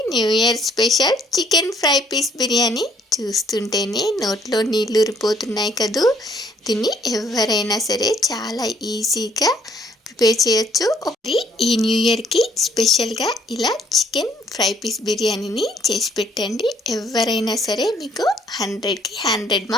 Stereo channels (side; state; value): both; normal; correlation 0.64